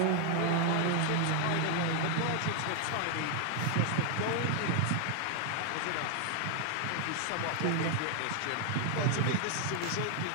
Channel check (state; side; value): different; both; correlation 0.00